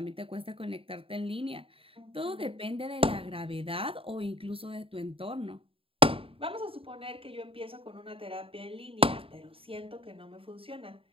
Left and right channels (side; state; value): left; late; 0.27 ms